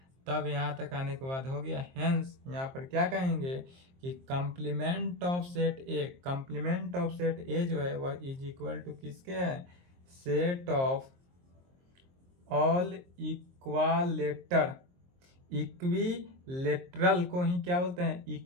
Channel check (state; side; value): late; left; 23 ms